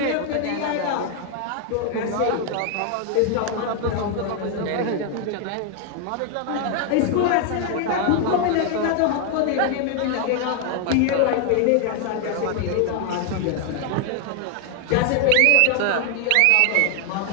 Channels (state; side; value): different; both; correlation 0.00